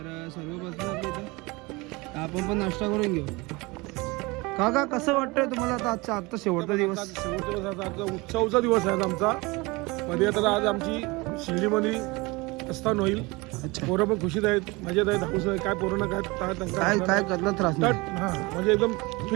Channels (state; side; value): quieter; left; 24.5 dB